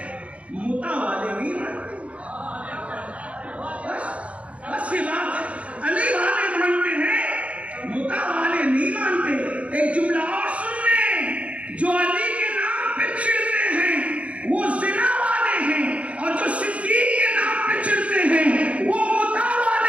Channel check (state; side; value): late; left; 0.064 ms